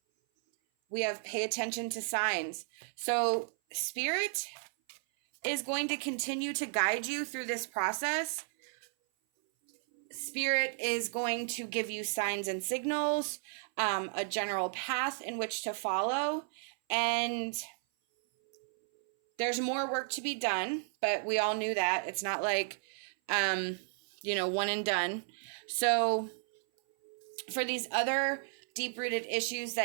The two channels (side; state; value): left; silent; 55 dB below the other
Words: We have pay attention to signs. So Spirit is going to continue to guide you through this process. Spirit is going to give you signs and signals, a general path in which to follow. And there's more work to be done, but we all knew that. It's not like, one and done. So for these other deep-rooted issues